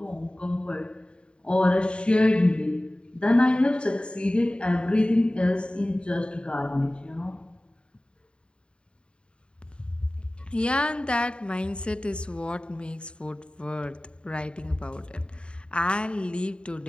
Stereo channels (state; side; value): late; right; 0.053 ms